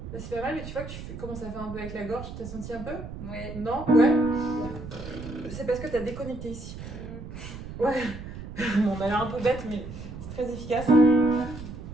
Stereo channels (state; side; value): noise; right; rumble, 10 dB below the sound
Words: Là, c'est pas mal, mais tu vois que commences à faire un peu avec la gorge. T'as senti un peu? Oui. Non? Ouais? C'est parce que t'as déconnecté ici. Ouais. Bon, on a l'air un peu bête, mais c'est très efficace.